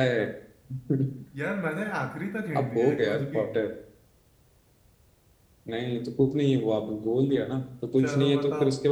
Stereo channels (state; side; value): identical; both; correlation 1.00